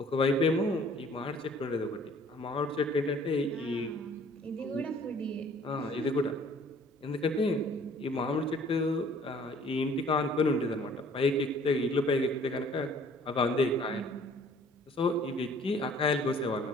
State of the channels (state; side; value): normal; both; correlation 0.55